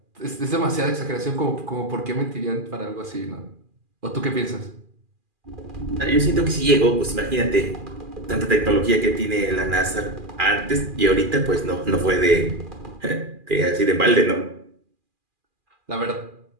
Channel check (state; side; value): late; left; 2.4 ms